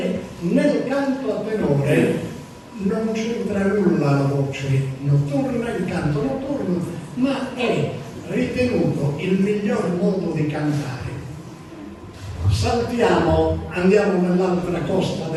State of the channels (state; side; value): identical; both; correlation 1.00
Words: nel canto a tenore non c'entra nulla la voce notturna, il canto notturno, ma è ritenuto il miglior modo di cantare. Saltiamo, andiamo nell'altra costa